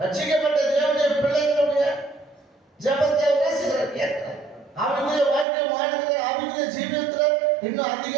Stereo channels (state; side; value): drops out; left; at 5.5 s